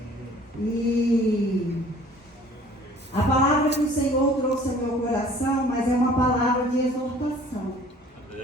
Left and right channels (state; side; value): normal; both; correlation 0.51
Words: E a palavra que o Senhor trouxe ao meu coração, mas é uma palavra de exortação.